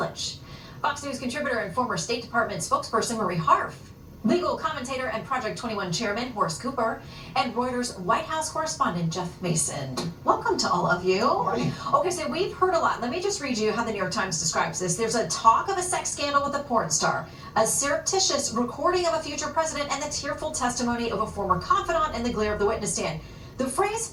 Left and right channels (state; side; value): identical; both; correlation 1.00